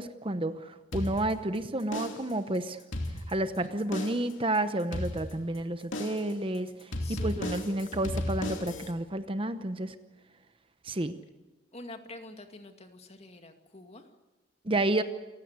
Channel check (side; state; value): both; normal; correlation 0.56